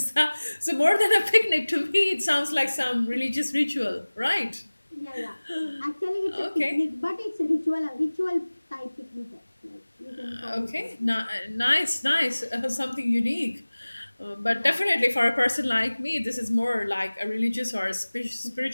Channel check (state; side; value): inverted; both; correlation -1.00